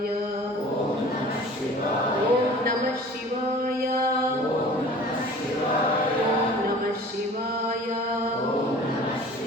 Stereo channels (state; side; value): normal; both; correlation 0.45